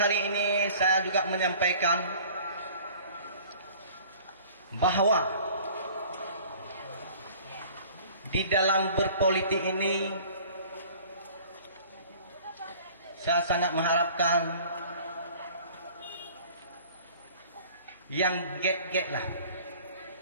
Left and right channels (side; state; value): both; inverted; correlation -0.48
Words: ini saya juga menyampaikan bahwa di dalam berpolitik ini saya sangat mengharapkan yang get lah.